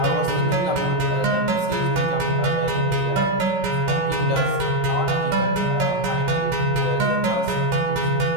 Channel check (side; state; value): left; late; 16 ms